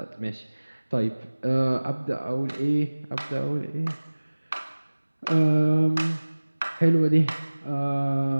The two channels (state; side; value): inverted; both; correlation -1.00